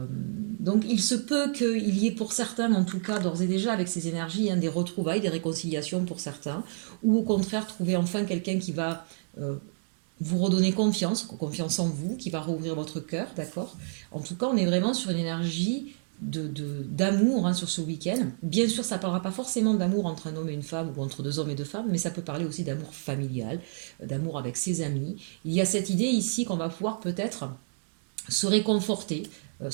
Donc il se peut qu'il y ait pour certains, en tout cas d'ores et déjà avec ces énergies, des retrouvailles, des réconciliations pour certains, ou au contraire trouver enfin quelqu'un qui va vous redonner confiance en vous, qui va rouvrir votre cœur, d'accord. En tout cas, on est vraiment sur une énergie d'amour sur ce week-end. Bien sûr, ça ne parlera pas forcément d'amour entre un homme et une femme ou entre deux hommes et deux femmes, mais ça peut parler aussi d'amour familial, d'amour avec ses amis. Il y a cette idée ici qu'on va pouvoir peut-être se réconforter,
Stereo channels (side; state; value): left; silent; 59 dB below the other